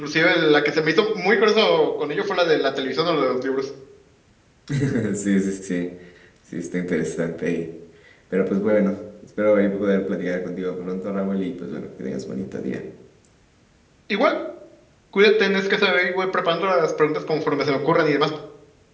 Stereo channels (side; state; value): both; identical; correlation 1.00